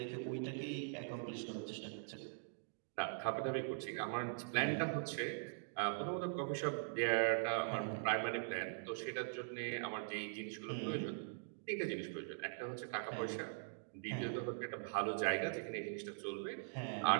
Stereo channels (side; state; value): left; silent; digital silence